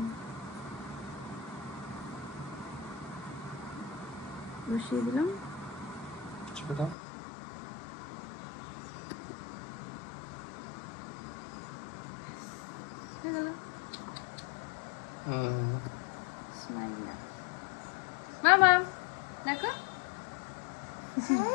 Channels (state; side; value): drops out; right; at 7.0 s